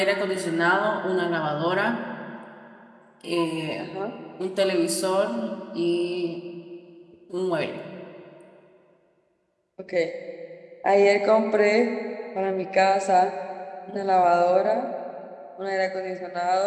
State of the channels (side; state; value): both; identical; correlation 1.00